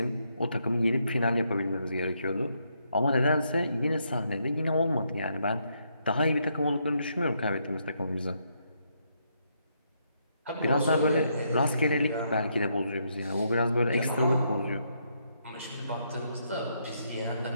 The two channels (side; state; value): both; inverted; correlation -0.77